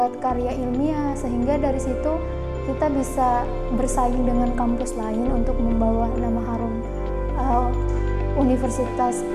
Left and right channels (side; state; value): both; identical; correlation 1.00